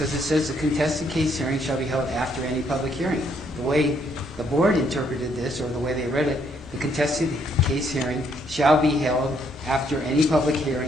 it says the contested case hearing shall be held after any public hearing. The way the board interpreted this, or the way they read it, the contested case hearing shall be held after any public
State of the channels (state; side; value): normal; both; correlation 0.70